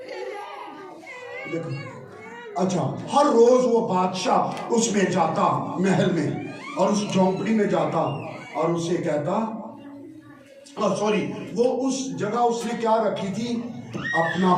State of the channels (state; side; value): identical; both; correlation 1.00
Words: دیکھو, اچھا ہر روز وہ بادشاہ اس میں جاتا, محل میں, اور اس جھونپڑی میں جاتا اور اسے کہتا, وہ اس جگہ اس نے کیا رکھی تھی, اپنا